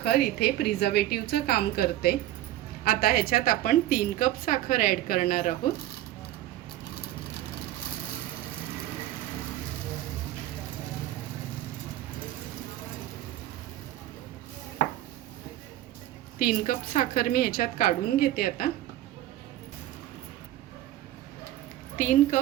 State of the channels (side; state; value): left; quieter; 14.0 dB